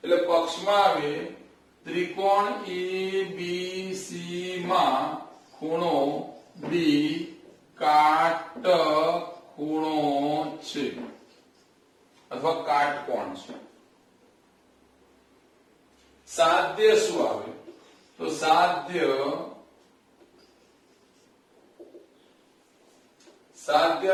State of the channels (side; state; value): both; identical; correlation 1.00